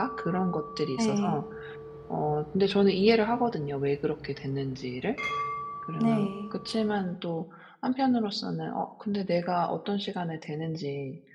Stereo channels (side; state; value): both; identical; correlation 1.00